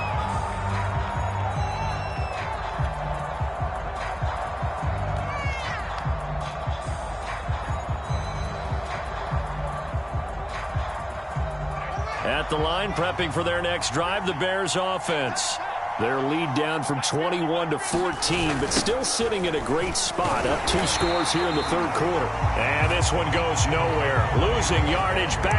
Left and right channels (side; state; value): both; identical; correlation 1.00